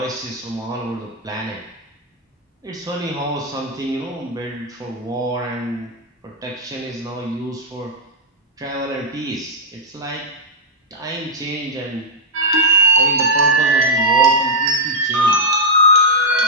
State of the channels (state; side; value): normal; both; correlation -0.04